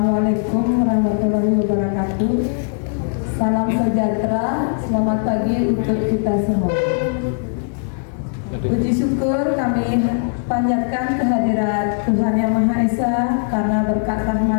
warahmatullahi wabarakatuh. Salam sejahtera, selamat pagi untuk kita semua. Puji syukur kami panjatkan kehadirat Tuhan Yang Maha Esa karena berkat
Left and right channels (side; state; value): right; silent; 66 dB below the other